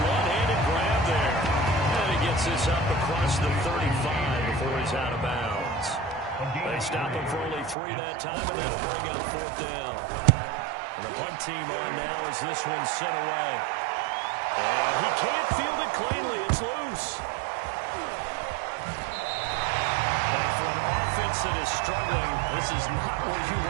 one-handed grab there. And he gets this up across the 35 before he's out of bounds. They stop him for only 3 that time, and that'll bring up 4th down. And the punt team on now as this one's sent away. And he can't field it cleanly. It's loose. And for an offense that is struggling, this is not where you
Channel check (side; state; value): left; drops out; at 7.8 s